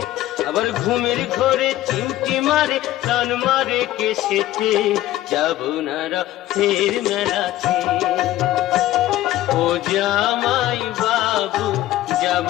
আবার ঘুমের ঘরে চিমটি মারে টান মারে কেসেতে, যাব না রথের মেলাতে, ও জামাই বাবু যাব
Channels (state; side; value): quieter; right; 14.7 dB